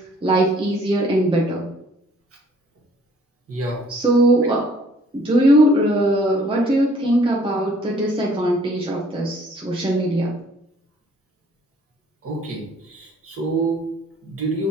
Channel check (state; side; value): normal; both; correlation 0.58